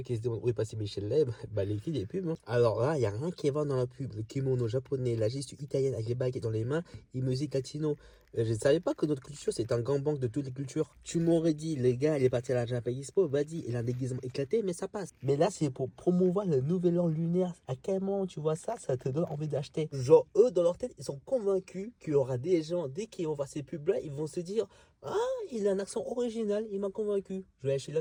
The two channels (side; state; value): both; identical; correlation 1.00